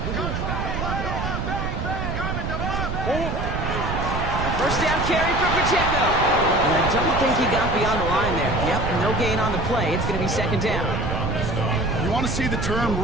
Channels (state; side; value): noise; right; rumble, 3 dB below the sound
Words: A first down carry for Pacheco. And I don't think he got beyond the line there. Yep, no gain on the play. It's going to be 2nd down. You want to see the term